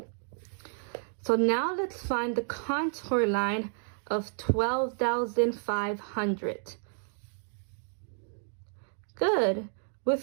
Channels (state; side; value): silent; left; 57 dB below the other